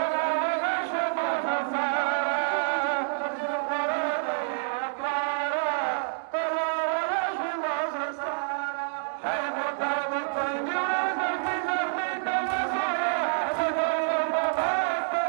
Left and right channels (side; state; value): left; silent; digital silence